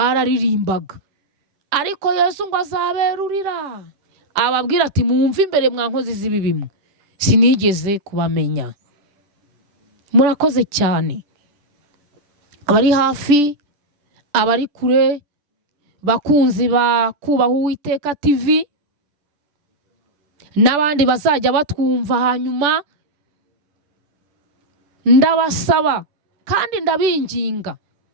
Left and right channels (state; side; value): late; left; 10 ms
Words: ariko Yesu ngo azaberurira ababwira ati mwumve imbere mwa nkozi z'ibi bimwe, sinigeze kubamenya. Murakoze cyane, abari hafi, abari kure, bakunzi ba Kubaha Uwiteka TV, n'abandi bazajya batwumva hanyuma, ndabasaba kandi ndabinginga